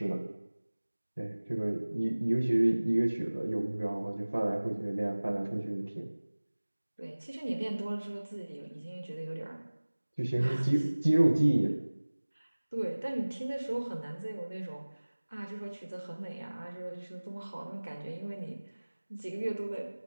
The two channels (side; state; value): both; inverted; correlation -1.00